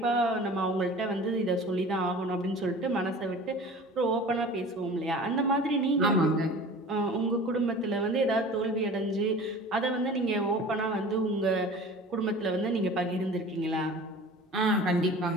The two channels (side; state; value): both; normal; correlation 0.41